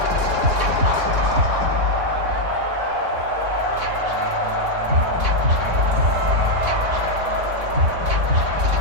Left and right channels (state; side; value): late; left; 3.5 ms